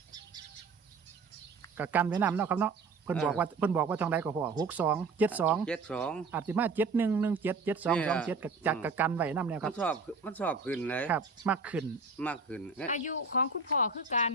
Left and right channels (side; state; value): left; quieter; 4.2 dB